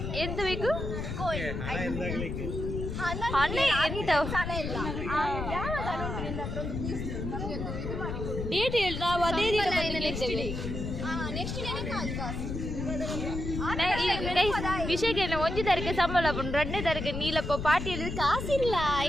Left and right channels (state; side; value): noise; left; rumble, 4 dB below the sound